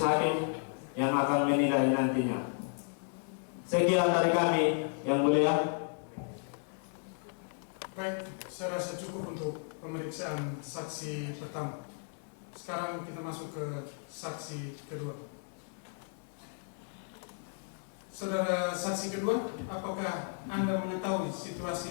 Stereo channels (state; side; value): silent; right; 55 dB below the other